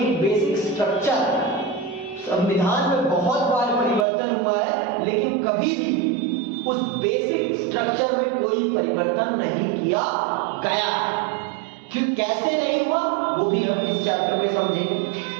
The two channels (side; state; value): left; drops out; at 4.0 s